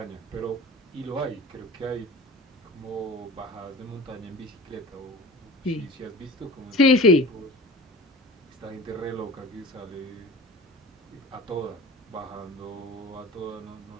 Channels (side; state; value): both; normal; correlation 0.38